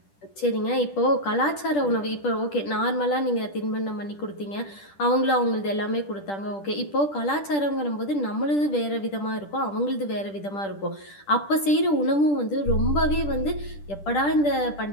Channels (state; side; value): late; right; 10 ms